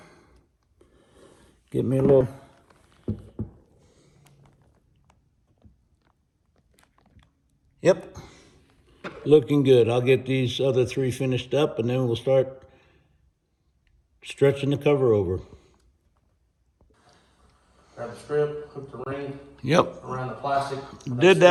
Get me a little. Yep. Looking good. I'll get these other 3 finished up, and then we'll start stretching the cover over. Grab the strip, hook the ring. Yep. Around the plastic. Did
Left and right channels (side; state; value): both; identical; correlation 1.00